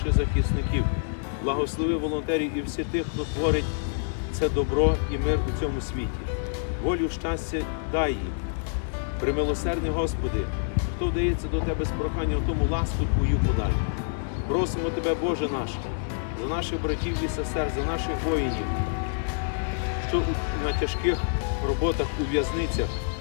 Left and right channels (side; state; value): right; silent; digital silence